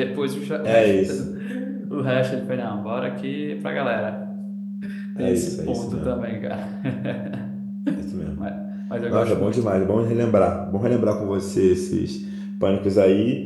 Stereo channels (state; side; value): identical; both; correlation 1.00